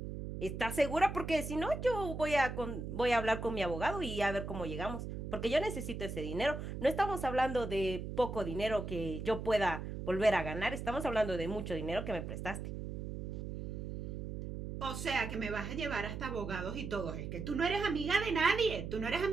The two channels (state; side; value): noise; right; hum, 6 dB below the sound